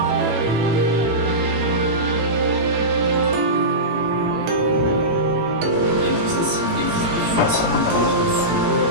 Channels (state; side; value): late; left; 18 ms